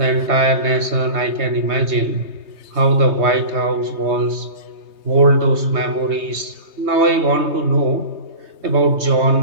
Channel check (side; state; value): left; late; 3.2 ms